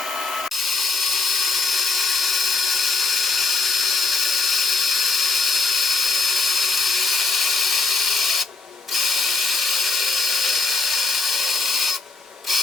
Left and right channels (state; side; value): quieter; right; 3.9 dB